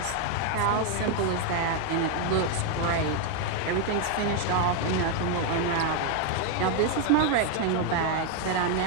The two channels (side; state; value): both; different; correlation 0.01